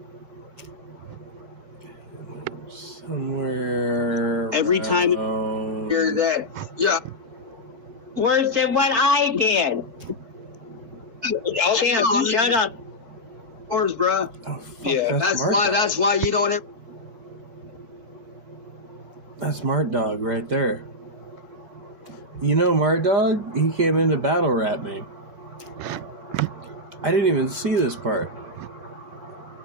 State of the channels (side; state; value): left; late; 4.5 ms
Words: Somewhere Every time around- you're that, Worse than what I did. Tim, shut up. Yours, bruh. Oh, fuck, Yeah, That's why you don't ever... That's Mart Dog right there. You know Mart Dog? He came in to battle rap me. I didn't even see this part.